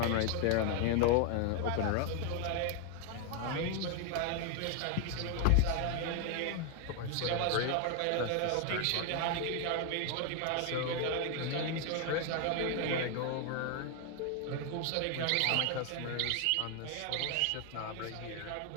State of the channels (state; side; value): different; both; correlation 0.01